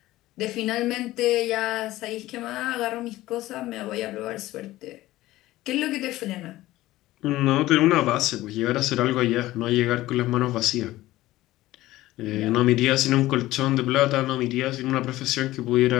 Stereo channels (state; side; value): quieter; right; 16.6 dB